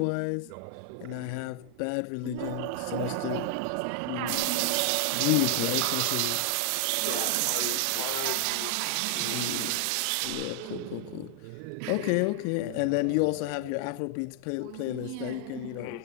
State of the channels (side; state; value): both; different; correlation 0.00